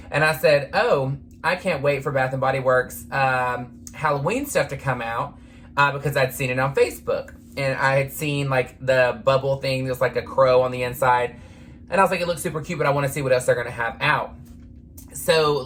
and I said, oh, I can't wait for Bath & Body Works Halloween stuff to come out because I'd seen it on Facebook. And I had seen, like, the bubble thing. There's, like, a crow on the inside. And I was like, it looks super cute, but I want to see what else they're going to have out. So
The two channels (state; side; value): identical; both; correlation 1.00